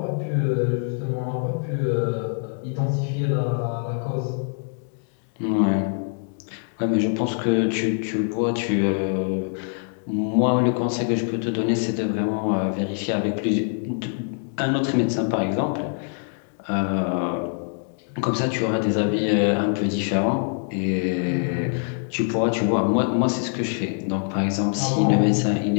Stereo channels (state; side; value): silent; right; 60 dB below the other